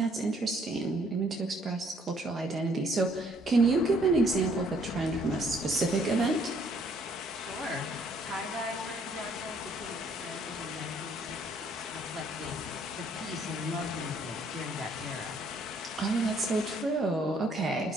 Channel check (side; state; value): both; normal; correlation 0.64